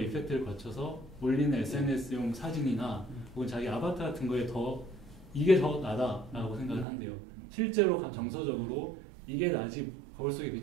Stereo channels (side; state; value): left; drops out; at 6.9 s